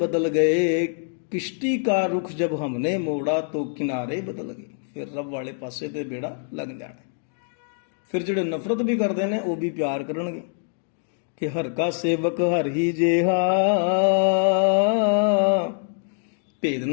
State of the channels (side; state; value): right; silent; 62 dB below the other